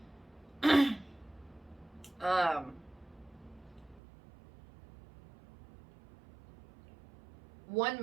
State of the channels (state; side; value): drops out; left; at 4.0 s